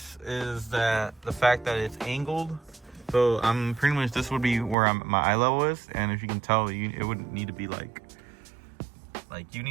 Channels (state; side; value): drops out; left; at 4.8 s